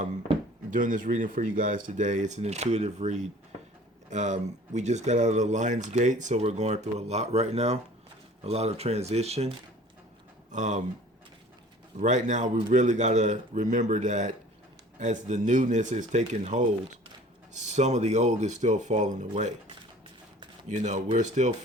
this reading for you guys today. It's an intuitive read. We just got out of the Lion's Gate, so we're going through a lot right now. A lot of transition. Right now, we really got to remember that as the newness is taking hold, some of the old is still falling away. You know, we're still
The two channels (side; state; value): both; normal; correlation 0.48